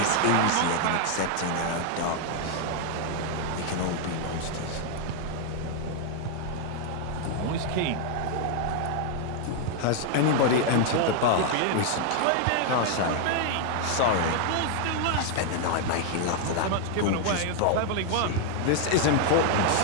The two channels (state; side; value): different; both; correlation 0.00